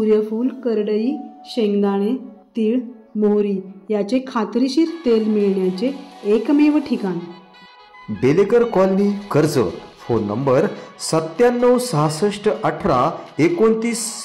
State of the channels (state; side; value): identical; both; correlation 1.00